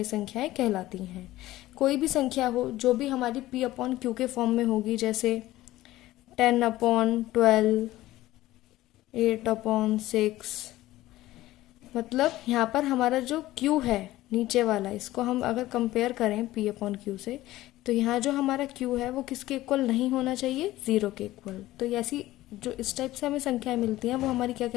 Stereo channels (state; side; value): quieter; right; 16.2 dB